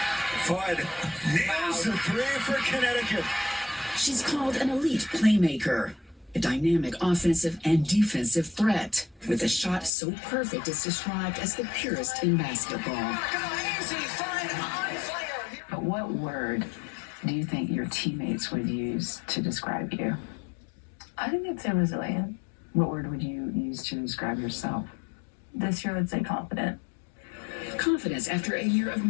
Fudd nails the three for Connecticut. She's called an elite playmaker, a dynamic offensive and defensive threat, with a shot so perfect it's described as the purest in basketball. But what word do you think your teammates would use to describe you? I think I'd say resilient. What word would you use to describe yourself? This year, I'd say confident. Confidence after a year of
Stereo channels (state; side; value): drops out; right; at 9.9 s